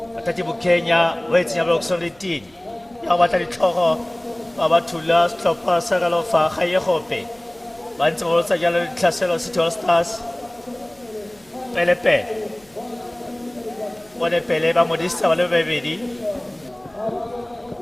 Atatibu Kenya, waiting about solidity. Yabatari Toro, Abatula, stop us, Sagalofa, Hayahope. Once also yellow Classel City All Stars. Pelepe. What a Peleba Modista, baby.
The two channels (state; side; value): noise; right; hum, 30 dB below the sound